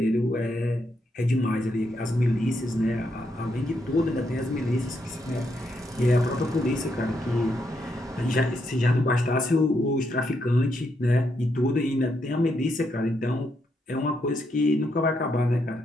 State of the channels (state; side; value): normal; both; correlation 0.79